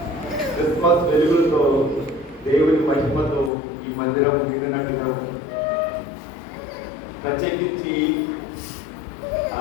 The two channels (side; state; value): right; drops out; at 3.5 s